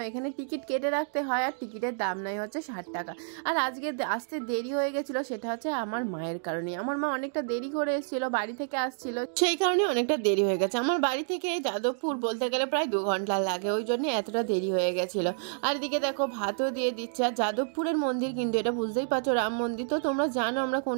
এখানে টিকিট কেটে রাখতে হয়। আর টিকিটের দাম নেয় হচ্ছে 60 টাকা। আর আজকে আসতে দেরি হয়ে গেছিলো, সেটা হচ্ছে আমার মায়ের কারণে। আমার মা অনেকটা দেরি করে এসেছিলো, বাড়ি থেকে আসছিল, সেই কারণে অনেকটা দেরি হয়ে গেছে। আমার বাড়ি থেকে যাদবপুর বলতে গেলে প্রায় 2 ঘন্টা লাগে, ওই জন্য এতটা দেরি হয়ে গেছিলো। আর এদিকে দেখো ভাতও দিয়ে দিচ্ছে। আর যাদবপুরের মন্দির কিন্তু এটা বুঝতেই পারছো রাম মন্দির। তো তোমরা জানো আমরা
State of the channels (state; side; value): silent; left; digital silence